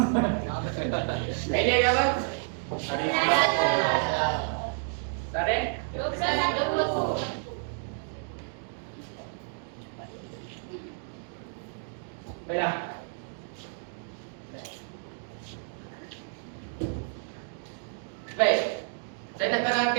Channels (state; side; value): silent; left; 58 dB below the other